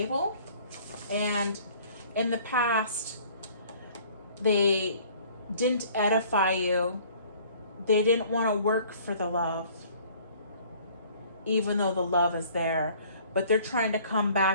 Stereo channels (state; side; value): inverted; both; correlation -0.54